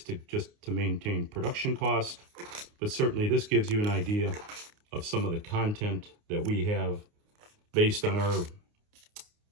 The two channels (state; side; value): late; left; 29 ms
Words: to maintain production cost. But certainly this gives you an idea of some of the content that we have based on our